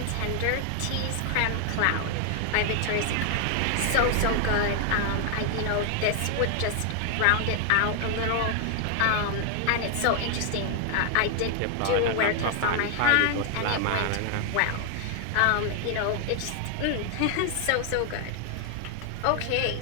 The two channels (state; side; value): different; both; correlation 0.00